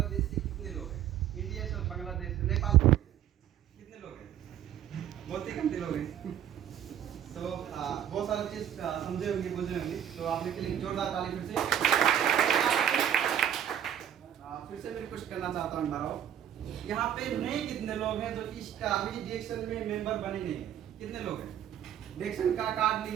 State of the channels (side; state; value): left; quieter; 10.1 dB